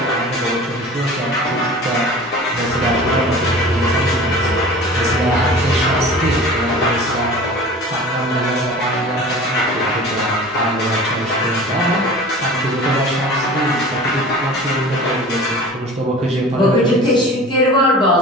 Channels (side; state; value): both; normal; correlation 0.40